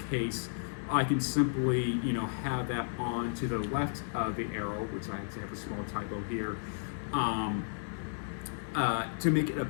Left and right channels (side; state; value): right; silent; 56 dB below the other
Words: case, I can simply, have that on to the left of the arrow, which I actually have a small typo here, to make it a